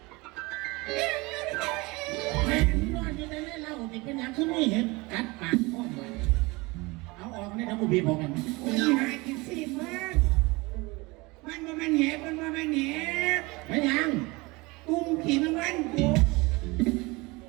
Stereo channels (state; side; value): quieter; left; 24.2 dB